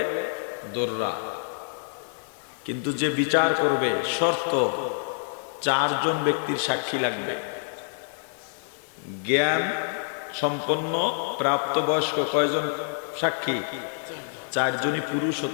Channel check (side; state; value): right; silent; 56 dB below the other